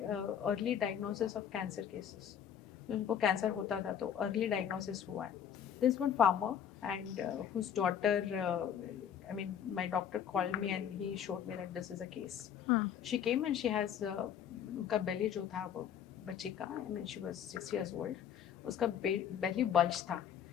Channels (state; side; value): quieter; right; 8.9 dB